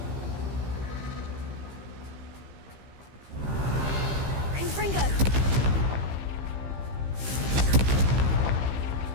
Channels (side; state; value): left; late; 15 ms